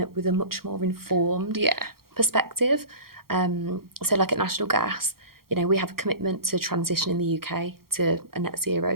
with a much more informed perspective. So at National Gas, we have a commitment to transition in the UK to a net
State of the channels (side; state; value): left; late; 0.94 ms